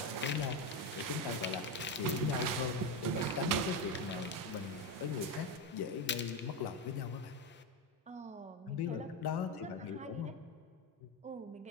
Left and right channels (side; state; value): both; normal; correlation 0.12